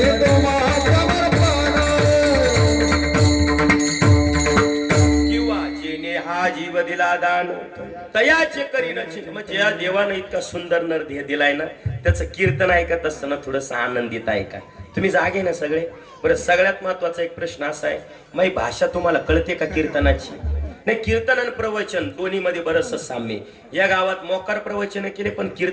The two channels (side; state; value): both; identical; correlation 1.00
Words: तयाचे करीनाची म्हणजे या देवानं इतका सुंदर नर दिलाय ना, त्याचं कीर्तन ऐकत असताना थोडस आनंदित आहे का? तुम्ही जागे ना सगळे? बरं, सगळ्यात महत्वाचा एक प्रश्न असा आहे, माझी भाषा तुम्हाला कळते का कीर्तनाची? नाही, कीर्तन आणि प्रवचन दोन्ही मध्ये बरंच साम्य. या गावात मोकार प्रवचन केले पण